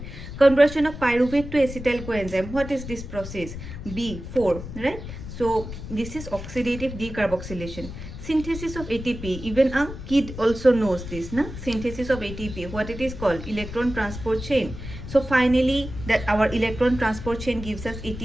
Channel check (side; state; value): left; noise; rumble, 10 dB below the sound